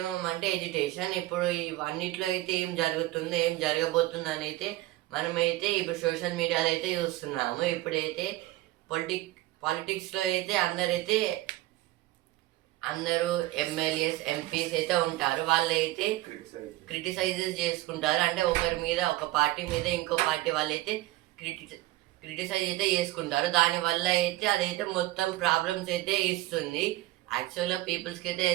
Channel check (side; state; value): left; quieter; 17.6 dB